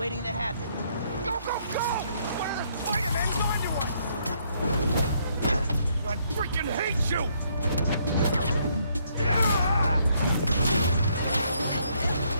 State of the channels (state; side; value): inverted; both; correlation -0.70